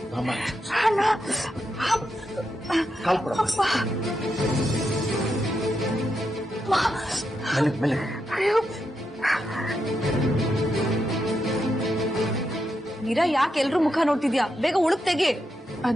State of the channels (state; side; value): normal; both; correlation 0.84